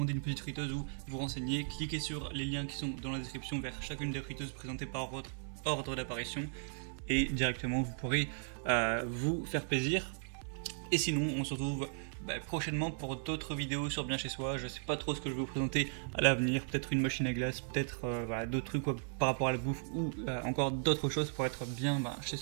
une petite friteuse ou vous renseigner, cliquez sur les liens qui sont dans la description vers chacune des friteuses présentées par votre ordre d'apparition, et directement vous pourrez vous faire plaisir. Et sinon on se retrouve prochainement pour d'autres vidéos sur Bien Chez Soi. Je sais pas trop ce que je vais vous présenter à l'avenir, peut-être une machine à glace, peut-être voilà, d'autres trucs par rapport à la bouffe, ou encore d'autres choses pour être bien chez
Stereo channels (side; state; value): left; silent; digital silence